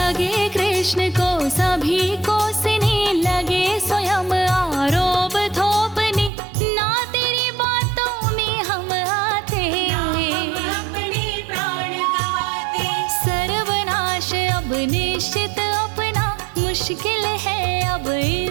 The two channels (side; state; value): left; drops out; at 6.3 s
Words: कृष्ण को सभी कोसने, लगे स्वयं आरोप थोपने, ना तेरी बातों में हम आते, हम अपने प्राण गवाते। सर्वनाश अब निश्चित अपना, मुश्किल है अब